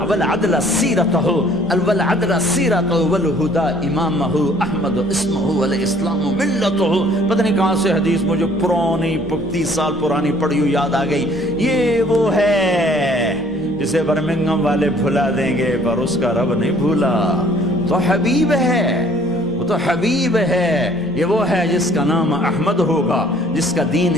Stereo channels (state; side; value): normal; both; correlation 0.57